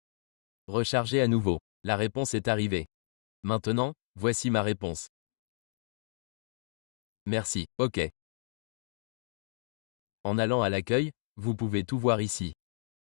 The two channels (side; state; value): right; silent; digital silence